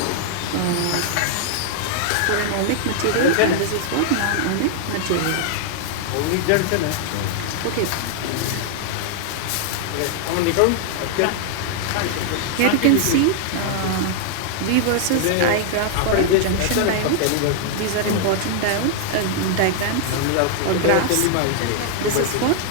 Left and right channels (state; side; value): different; both; correlation 0.00